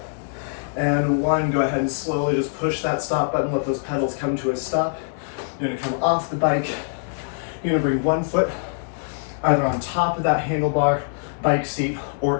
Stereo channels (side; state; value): right; silent; digital silence